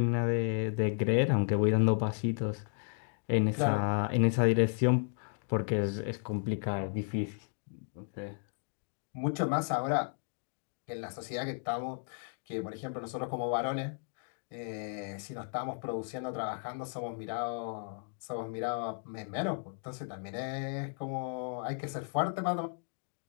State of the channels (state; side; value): silent; right; 55 dB below the other